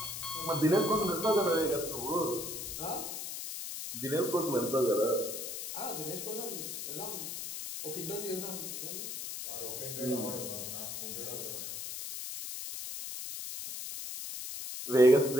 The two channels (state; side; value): noise; left; hiss, 6 dB below the sound